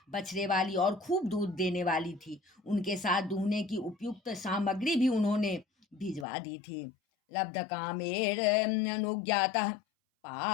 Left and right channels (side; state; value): right; drops out; at 6.2 s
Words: बछड़े वाली और खूब दूध देने वाली थी। उनके साथ दूहने की उपयुक्त सामग्री भी उन्होंने भिजवा दी थी। लब्ध कामेर अनुज्ञातः